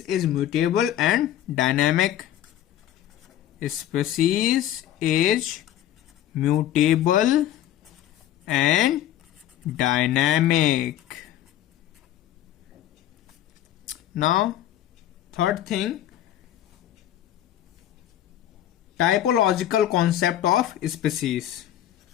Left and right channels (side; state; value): right; quieter; 12.1 dB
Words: is mutable and dynamic. Species is mutable and dynamic. Now, third thing, typological concept of species